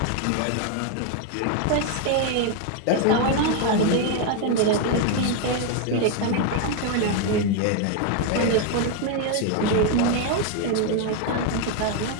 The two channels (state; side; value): different; both; correlation 0.01